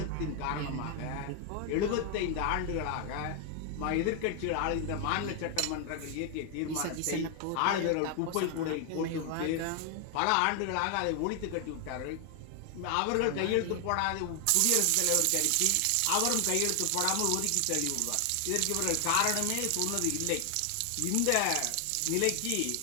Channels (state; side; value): different; both; correlation 0.00